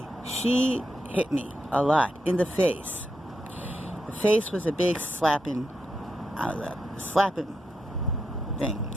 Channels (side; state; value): both; normal; correlation 0.84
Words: she hit me a lot in the face. The face was a big slapping thing.